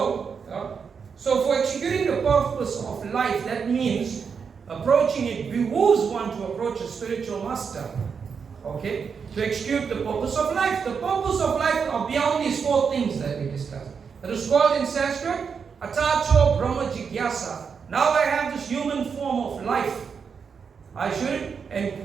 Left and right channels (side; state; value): left; quieter; 6.1 dB